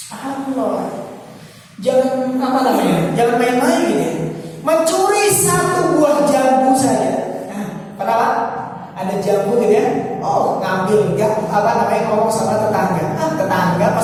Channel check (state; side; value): identical; both; correlation 1.00